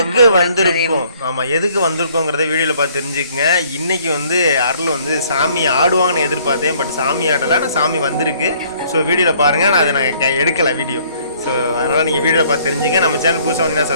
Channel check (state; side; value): inverted; both; correlation -0.61